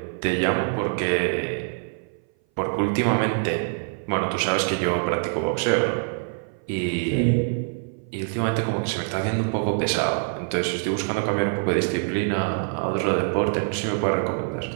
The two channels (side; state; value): left; silent; 58 dB below the other